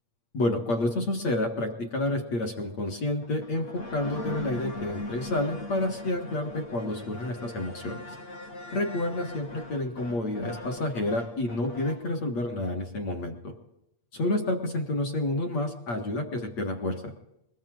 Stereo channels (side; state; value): right; late; 8.6 ms